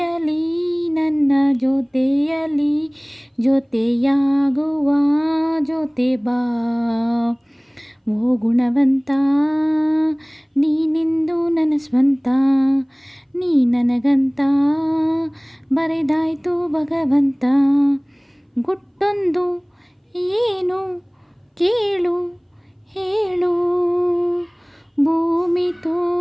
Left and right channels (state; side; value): identical; both; correlation 1.00